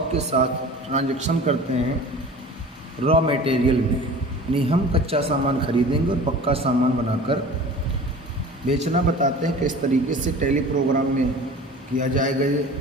के साथ ट्रांजैक्शन करते हैं रॉ मटेरियल में, यानी हम कच्चा सामान खरीदेंगे और पक्का सामान बनाकर बेचना बताते हैं किस तरीके से टैली प्रोग्राम में किया जाएगा ये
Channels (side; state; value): both; normal; correlation 0.40